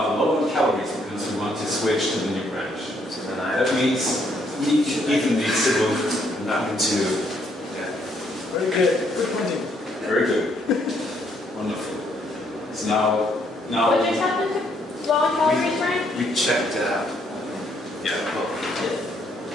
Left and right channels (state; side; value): normal; both; correlation 0.70